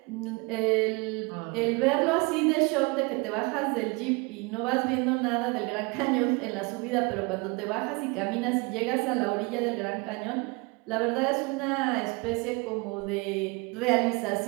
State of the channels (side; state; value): left; quieter; 27.7 dB